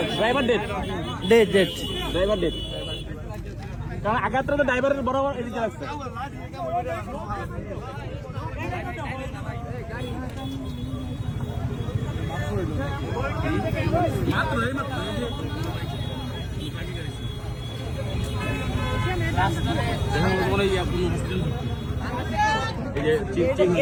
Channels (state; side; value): identical; both; correlation 1.00